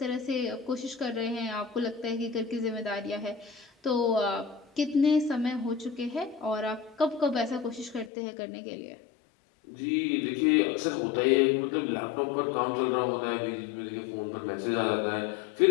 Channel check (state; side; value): drops out; right; at 8.1 s